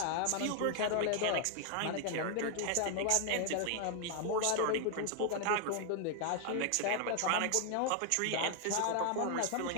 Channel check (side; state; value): both; different; correlation 0.00